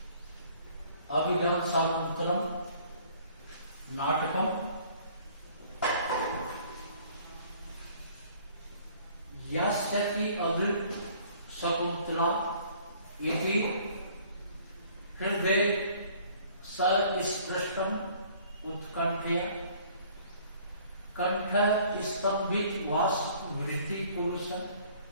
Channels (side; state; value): both; inverted; correlation -0.55